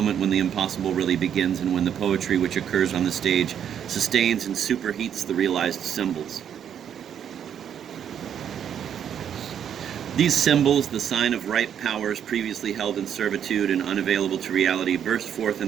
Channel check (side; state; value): left; quieter; 8.9 dB